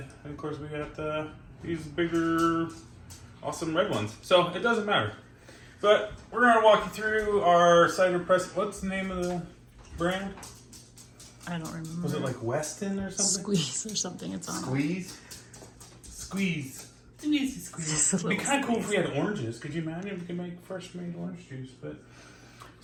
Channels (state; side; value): identical; both; correlation 1.00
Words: of course we got these bigger, awesome red ones. So it doesn't matter. But we're going to walk you through our cider press. What's the name of the brand? I don't remember. Was it like Weston or something? Squeeze or something. It's on. Squeeze? Squeeze. It's an easy squeeze. It'd be kind of cool if we had oranges. Could you imagine if we could make fresh made orange juice? But